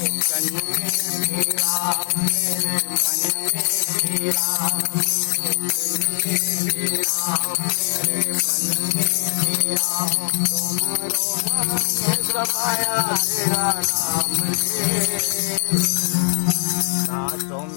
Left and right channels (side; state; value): right; silent; digital silence